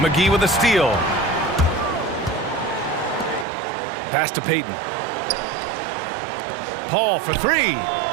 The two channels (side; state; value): left; drops out; at 3.5 s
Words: with a steal. Pass to Payton. Paul for 3.